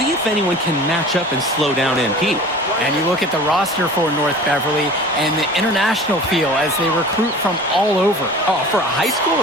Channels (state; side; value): normal; both; correlation 0.41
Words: if anyone can match up and slow down MP. And you look at the roster for North Beverly and the international feel as they recruit from all over. Oh, for a high school,